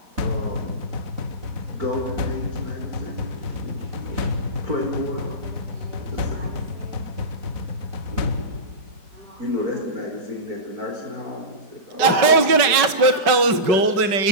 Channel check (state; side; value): late; left; 5.3 ms